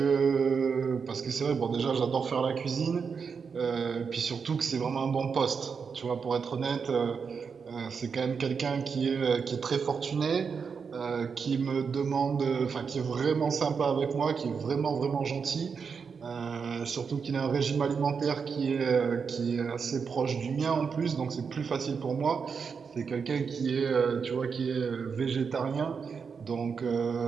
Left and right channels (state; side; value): quieter; left; 5.9 dB